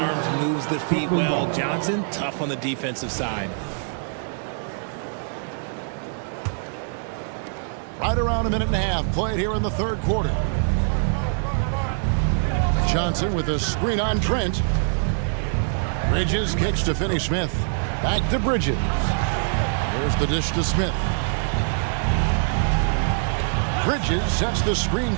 moves the feet well. Johnson, tough on the defensive side. Right around a minute and a half played here in the 3rd quarter. Johnson with a screen on Trent. Bridges kicks to Finney-Smith. Back to Bridges. Here's the dish to Smith. Bridges sets the screen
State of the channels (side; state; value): left; silent; digital silence